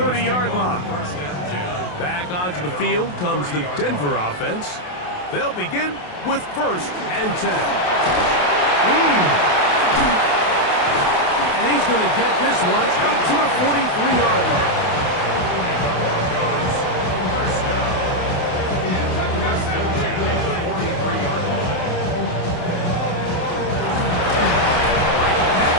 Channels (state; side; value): late; right; 28 ms